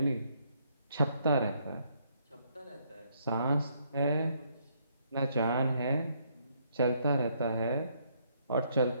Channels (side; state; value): both; inverted; correlation -0.70